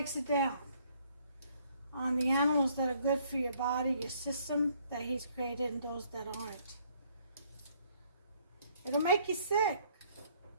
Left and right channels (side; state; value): both; inverted; correlation -0.65